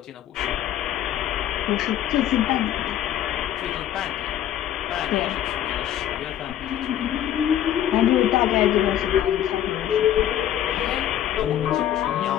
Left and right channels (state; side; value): quieter; right; 11.2 dB